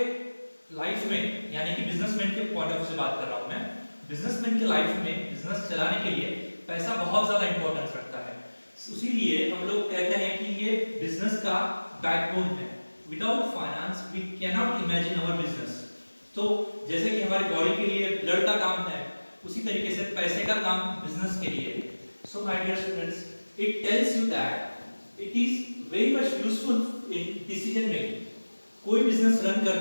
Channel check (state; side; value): inverted; both; correlation -1.00